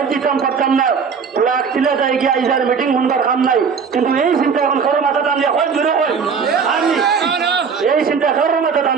দিতাম পারতাম না, ফ্লাগ তিলে যাই গিয়ে আইসার মিটিং শুনবার কাম নাই। কিন্তু এই চিন্তা এখন কারো মাথা টানলে হয় জুড়ে হয় আমি এই চিন্তা কারো মাথা টান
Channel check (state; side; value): quieter; left; 6.0 dB